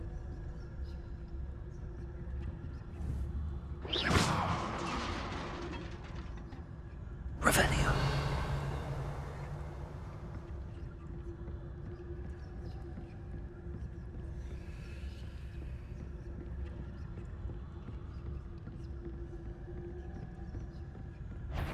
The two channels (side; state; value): both; identical; correlation 1.00